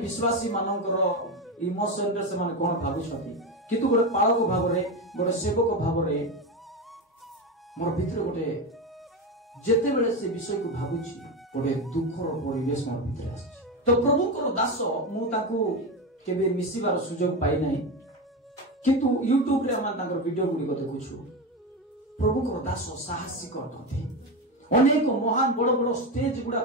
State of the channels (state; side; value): normal; both; correlation 0.17